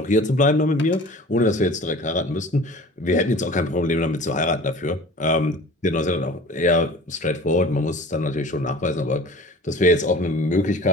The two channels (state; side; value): normal; both; correlation 0.42